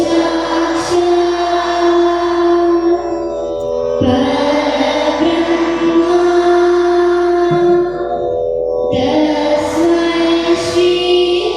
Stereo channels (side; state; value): left; noise; hum, 22 dB below the sound